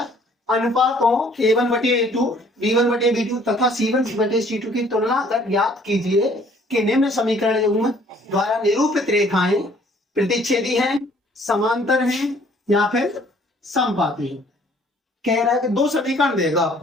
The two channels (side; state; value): both; normal; correlation 0.58